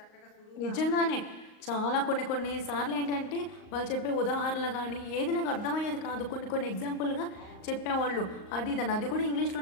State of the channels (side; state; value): right; late; 38 ms